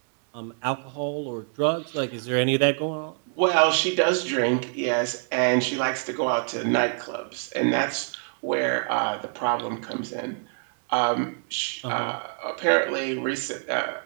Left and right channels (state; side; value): silent; left; 56 dB below the other